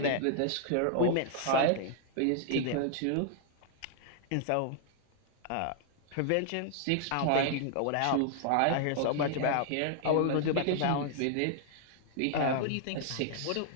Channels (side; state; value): both; different; correlation -0.01